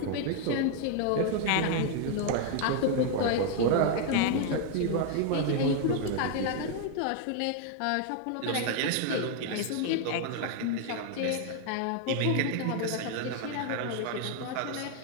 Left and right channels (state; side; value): different; both; correlation 0.00